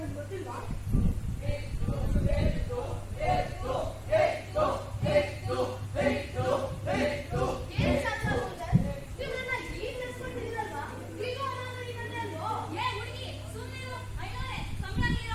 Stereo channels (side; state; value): both; identical; correlation 1.00